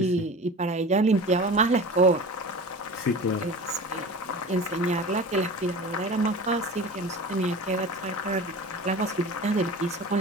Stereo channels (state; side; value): normal; both; correlation 0.35